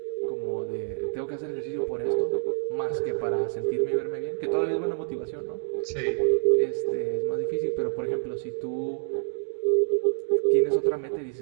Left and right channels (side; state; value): left; silent; digital silence